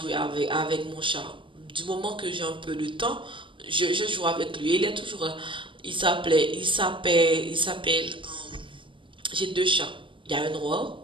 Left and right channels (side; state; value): left; late; 0.25 ms